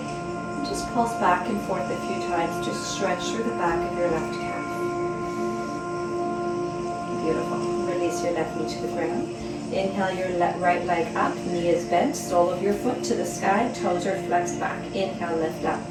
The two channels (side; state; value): both; identical; correlation 1.00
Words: And just pulse back and forth a few times to stretch through the back of your left calf. Beautiful. Release your left knee to the ground. Inhale your right leg up, knee is bent, sole of your foot to the sky, toes are flexed back. Inhale, lift up.